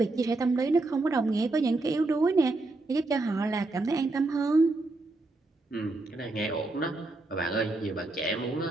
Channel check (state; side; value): quieter; left; 3.1 dB